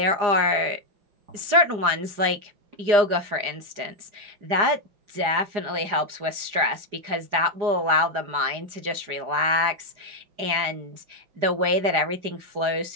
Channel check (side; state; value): left; late; 4.9 ms